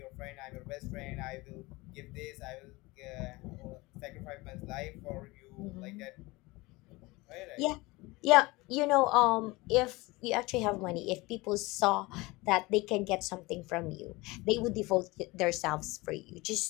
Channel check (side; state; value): right; quieter; 22.5 dB